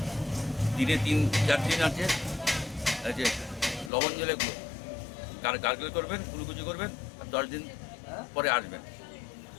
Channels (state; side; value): drops out; right; at 3.9 s